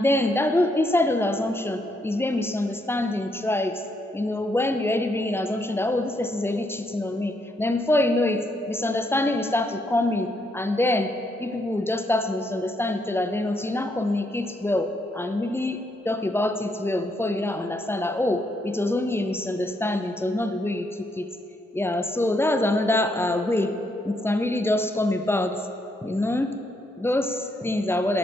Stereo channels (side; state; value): both; normal; correlation 0.75